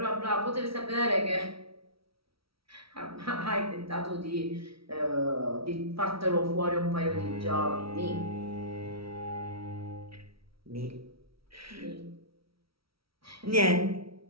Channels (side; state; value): left; late; 0.75 ms